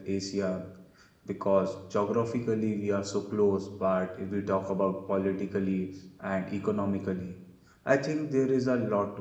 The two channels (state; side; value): identical; both; correlation 1.00